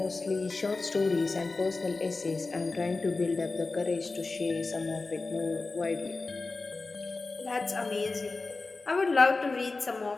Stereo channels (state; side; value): quieter; right; 3.7 dB